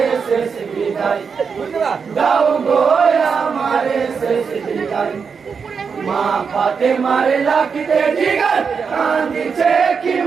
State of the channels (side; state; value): left; quieter; 5.8 dB